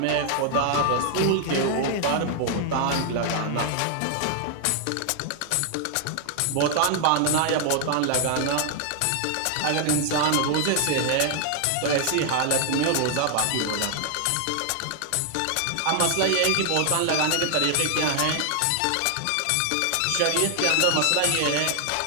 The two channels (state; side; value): different; both; correlation 0.00